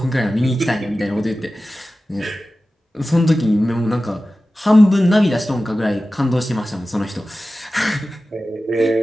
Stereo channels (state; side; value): normal; both; correlation 0.95